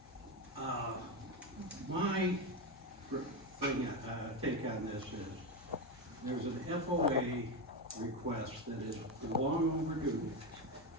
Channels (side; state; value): both; normal; correlation 0.13